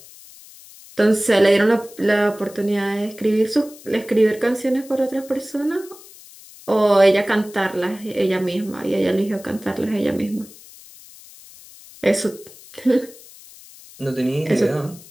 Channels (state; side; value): noise; left; hiss, 21 dB below the sound